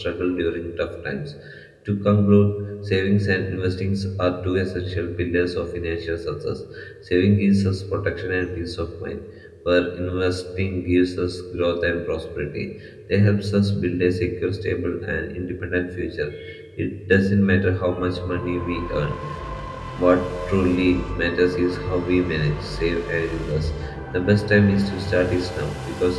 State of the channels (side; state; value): both; identical; correlation 1.00